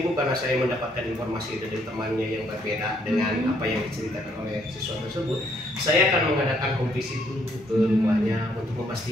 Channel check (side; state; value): both; normal; correlation 0.69